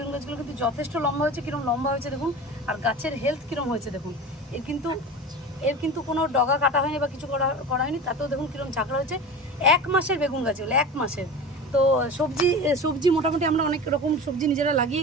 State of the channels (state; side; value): normal; both; correlation 0.32